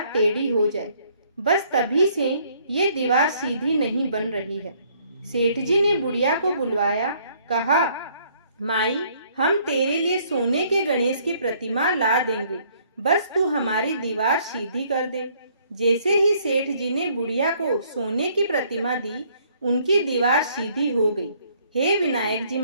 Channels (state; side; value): inverted; both; correlation -0.64